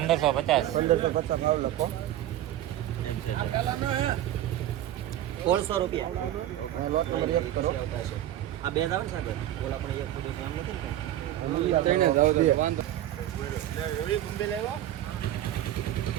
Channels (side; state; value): left; quieter; 12.9 dB